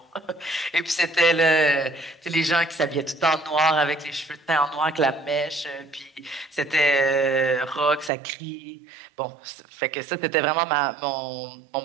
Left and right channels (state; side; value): drops out; left; at 8.1 s